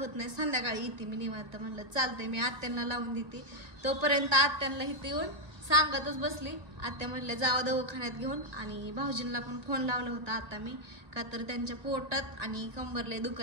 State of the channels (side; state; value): left; late; 1.8 ms